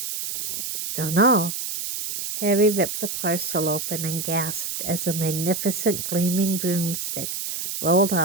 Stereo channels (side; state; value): right; noise; hiss, 4 dB below the sound